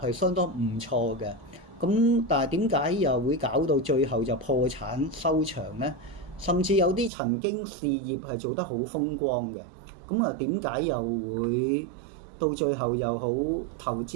相當唔錯嘅，咁但係點解又會搞到最後就破產收場呢？甚至有啲曾經事業係做得好風光嘅，咁點解又會到最後又好投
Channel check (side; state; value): left; drops out; at 7.1 s